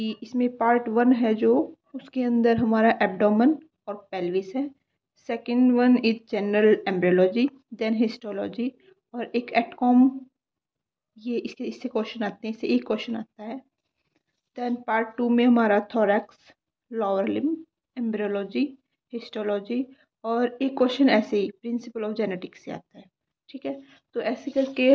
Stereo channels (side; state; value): both; identical; correlation 1.00